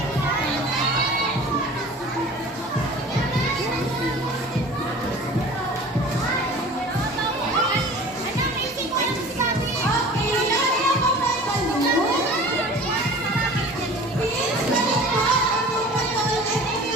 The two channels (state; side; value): normal; both; correlation 0.42